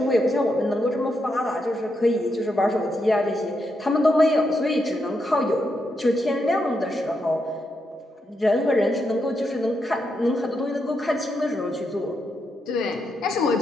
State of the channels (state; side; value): normal; both; correlation 0.82